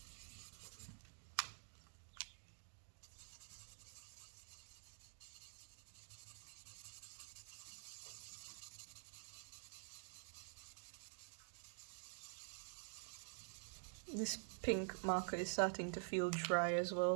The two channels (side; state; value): left; silent; digital silence